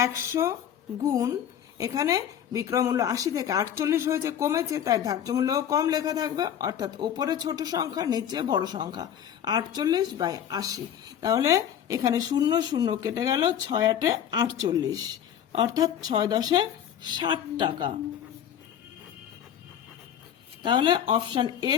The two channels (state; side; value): quieter; right; 9.6 dB